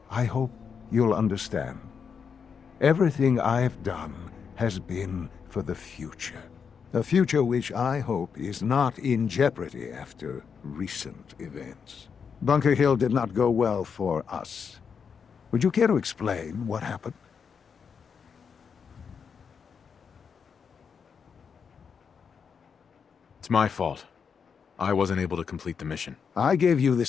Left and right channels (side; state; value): right; quieter; 6.4 dB